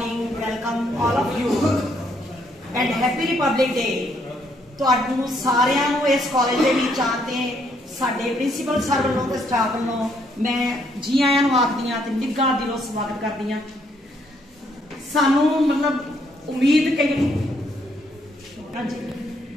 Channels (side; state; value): both; normal; correlation 0.71